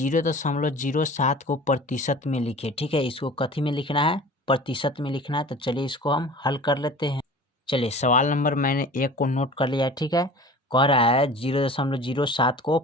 को प्रतिशत में लिखे। ठीक है, इसको कथी में लिखना है, प्रतिशत में लिखना है। तो चलिए इसको हम हल कर लेते हैं। चलिए, सवाल नंबर मैंने 1 को नोट कर लिया है। ठीक है, कह रहा है 0.07 को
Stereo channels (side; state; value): both; normal; correlation 0.41